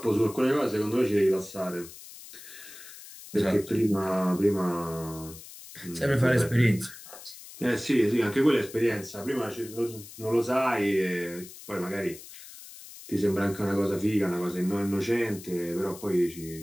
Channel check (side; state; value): left; noise; hiss, 16 dB below the sound